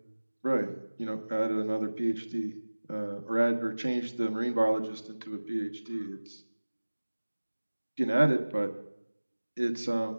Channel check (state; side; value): inverted; both; correlation -1.00